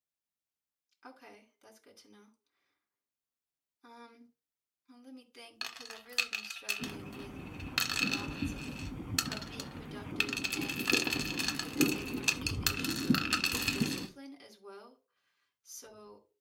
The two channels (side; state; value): both; identical; correlation 1.00